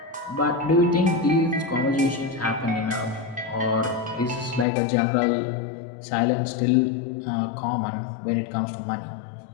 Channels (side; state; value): right; drops out; at 4.7 s